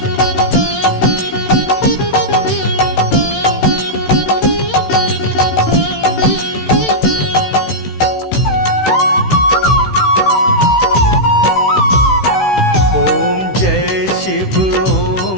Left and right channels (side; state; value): right; late; 16 ms